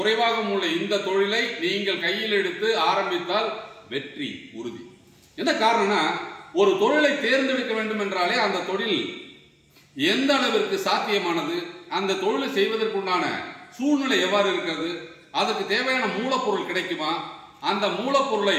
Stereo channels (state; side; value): identical; both; correlation 1.00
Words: உள்ள இந்த தொழிலை நீங்கள் கையில் எடுத்து ஆரம்பித்தால் வெற்றி உறுதி. என்ன காரணம்னா, ஒரு தொழிலை தேர்ந்தெடுக்க வேண்டும் என்றாலே அந்த தொழில் எந்த அளவிற்கு சாத்தியமானது, அந்த தொழிலை செய்வதற்குண்டான சூழ்நிலை எவ்வாறு இருக்கிறது, அதுக்கு தேவையான மூலப்பொருள் கிடைக்குமா, அந்த மூலப்பொருளை